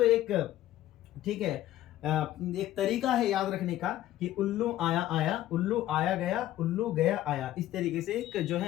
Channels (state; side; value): quieter; right; 13.9 dB